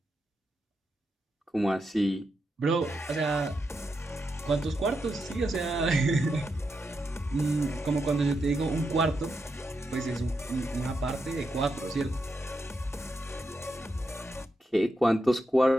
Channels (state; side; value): normal; both; correlation 0.85